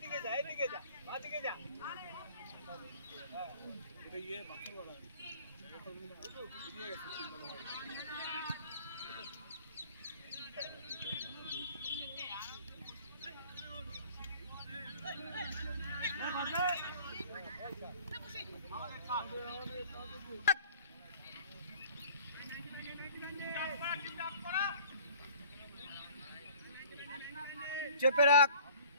যা, এইদিকে যা, বাদিকে যা। এটা ইয়ে বাকি বলা। চেপে রাখ,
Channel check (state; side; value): inverted; both; correlation -0.50